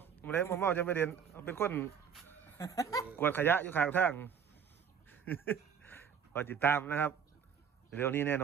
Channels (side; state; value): left; quieter; 7.4 dB